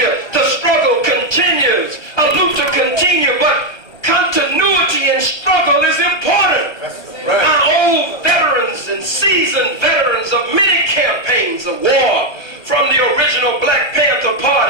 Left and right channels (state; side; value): late; right; 1.3 ms